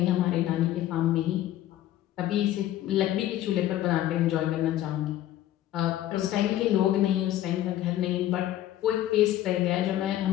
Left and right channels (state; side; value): quieter; right; 13.3 dB